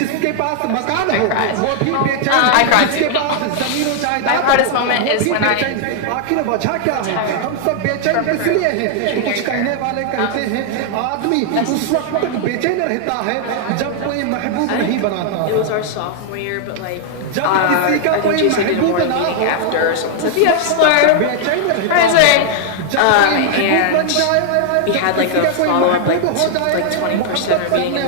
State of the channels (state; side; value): different; both; correlation 0.00